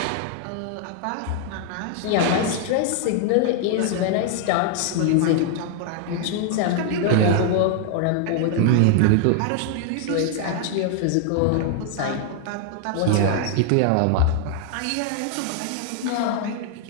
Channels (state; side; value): different; both; correlation 0.00